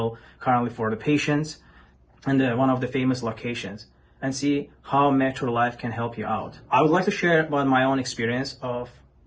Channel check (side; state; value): both; identical; correlation 1.00